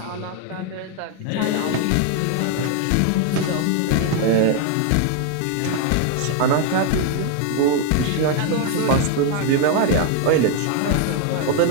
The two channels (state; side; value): different; both; correlation 0.00